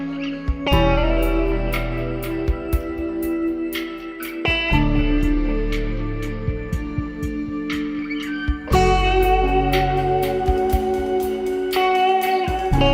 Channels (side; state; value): both; identical; correlation 1.00